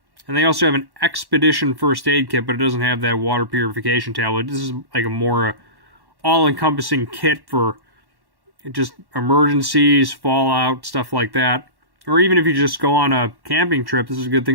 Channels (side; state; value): left; late; 1.1 ms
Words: And they also have an expedition first aid kit, but it doesn't have that water purification tablet. This is like a more all-encompassing kit for just emergencies, fallout, stuff like that. Or even if you just go on a camping trip, this is a good